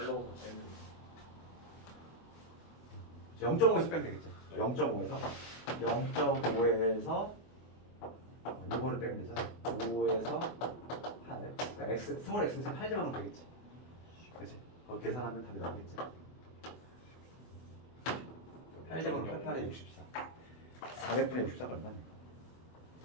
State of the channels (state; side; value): late; right; 24 ms